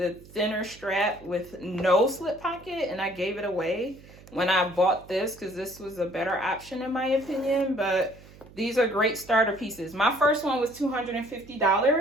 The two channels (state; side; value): noise; right; hum, 21 dB below the sound